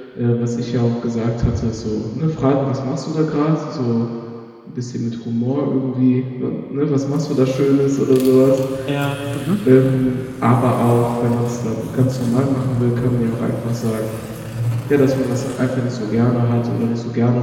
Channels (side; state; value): both; identical; correlation 1.00